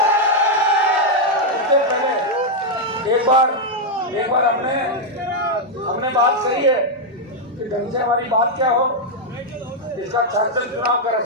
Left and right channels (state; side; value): normal; both; correlation -0.01